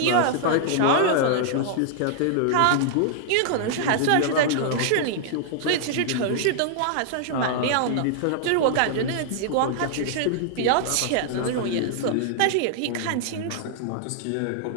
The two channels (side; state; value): both; different; correlation -0.01